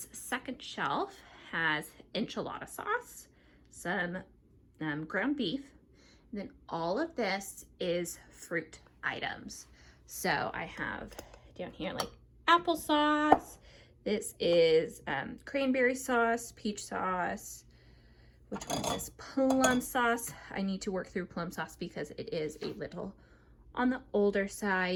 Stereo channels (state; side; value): identical; both; correlation 1.00